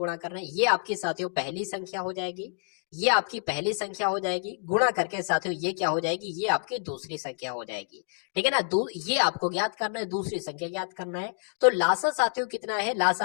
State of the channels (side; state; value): right; silent; digital silence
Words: करना है। ये आपकी साथियों पहली संख्या हो जाएगी, ये आपकी पहली संख्या हो जाएगी। गुणा करके साथियों ये क्या हो जाएगी, ये आपकी दूसरी संख्या हो जाएगी। ठीक है ना, ये आपको ज्ञात करना है, दूसरी संख्या ज्ञात करना है। तो लासा साथियों कितना है,